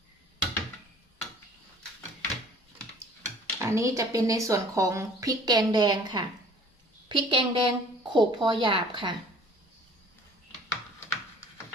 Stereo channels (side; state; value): both; normal; correlation 0.51